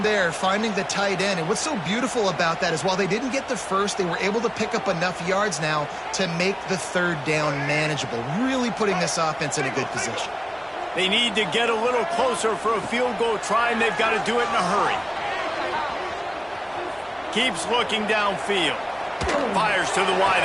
there, finding the tight end. And what's so beautiful about that is while they didn't get the first, they were able to pick up enough yards now to make the 3rd down manageable, really putting this offense in a good position. They need to get a little closer for a field goal try, and they've got to do it in a hurry. Keeps looking downfield. Fires to the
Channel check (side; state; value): both; identical; correlation 1.00